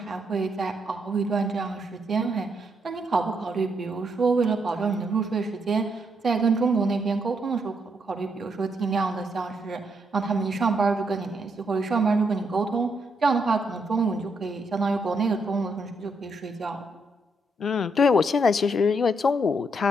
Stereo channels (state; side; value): normal; both; correlation 0.77